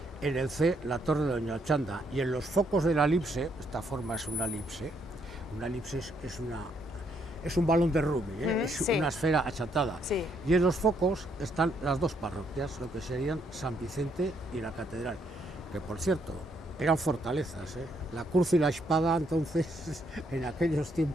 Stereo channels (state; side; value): normal; both; correlation 0.73